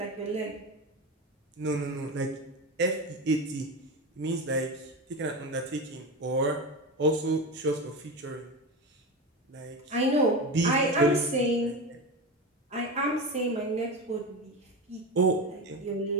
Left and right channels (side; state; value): both; normal; correlation 0.22